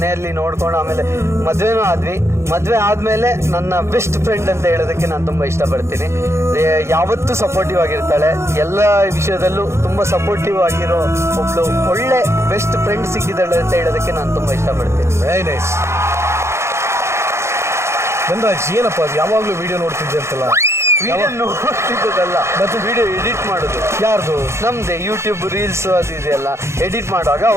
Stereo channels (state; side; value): late; left; 0.13 ms